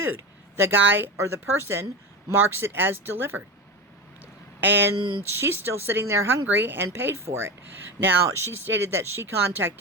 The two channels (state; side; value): normal; both; correlation 0.22